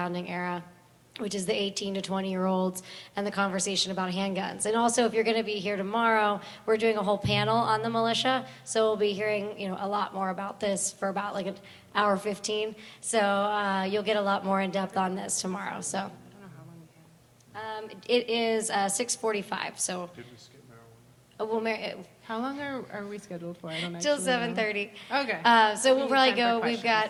era, which is the 18 to 20-year-olds and the conversation about handguns. And also, if you're going to be here tomorrow, we're doing a whole panel on the militia, so we'll be hearing, you know, a lot more about this for about like an hour 15. So you'll get a lot more in depth on this tomorrow. So I don't know how long we have. it is 6:45. So Did we skip marijuana? we'll How long are we scheduled for? I don't till actually know. 7:30. Okay. So We we'll need probably time for go, we've questions. got,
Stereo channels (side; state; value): both; identical; correlation 1.00